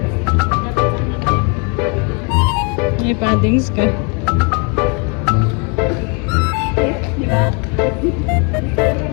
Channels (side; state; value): right; quieter; 34.9 dB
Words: May paddings ka. Di ba?